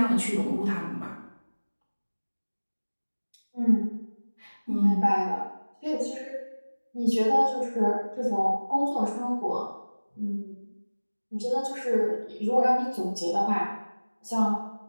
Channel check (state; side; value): inverted; both; correlation -1.00